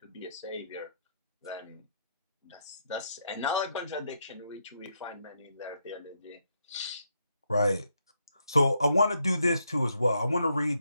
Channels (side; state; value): both; inverted; correlation -0.78